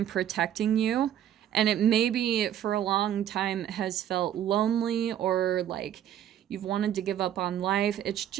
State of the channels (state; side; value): quieter; left; 10.8 dB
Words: protecting you. And it maybe for a long time has felt lonely, or like you've wanted to give up on life. It's